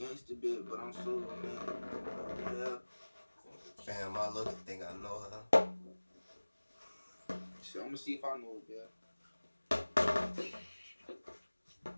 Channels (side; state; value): both; inverted; correlation -1.00